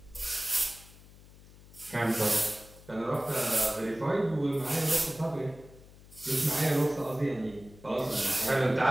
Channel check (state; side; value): noise; left; hum, 22 dB below the sound